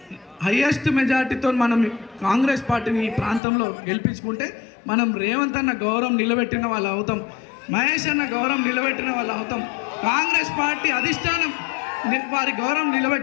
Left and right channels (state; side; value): drops out; right; at 3.4 s